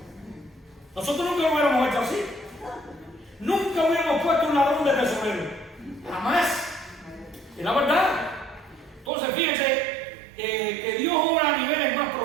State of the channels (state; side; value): drops out; left; at 9.1 s